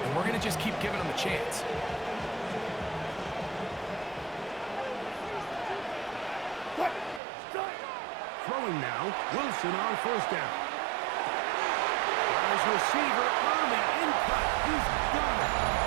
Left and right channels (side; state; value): left; drops out; at 7.2 s